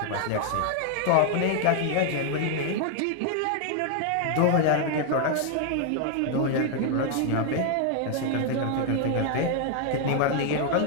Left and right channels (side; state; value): both; different; correlation 0.00